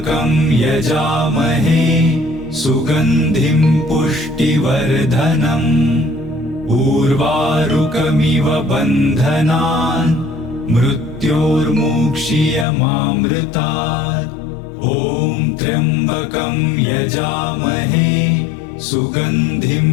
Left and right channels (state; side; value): drops out; right; at 12.7 s